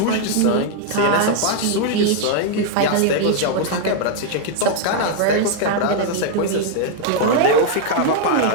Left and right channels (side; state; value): both; different; correlation 0.00